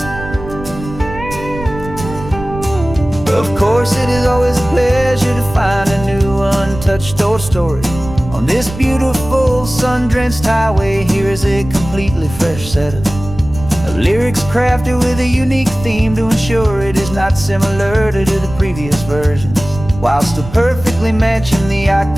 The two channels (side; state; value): right; noise; rumble, 12 dB below the sound